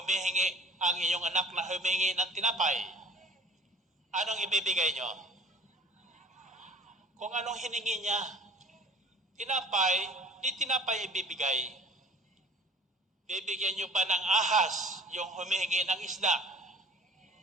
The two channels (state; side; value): normal; both; correlation 0.47